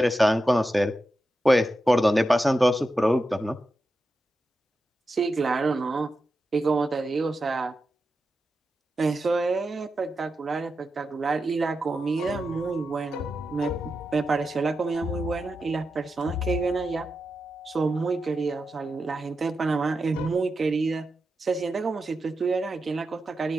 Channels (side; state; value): both; normal; correlation 0.89